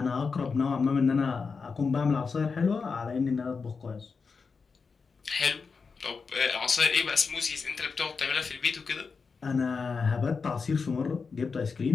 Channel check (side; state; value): right; quieter; 5.0 dB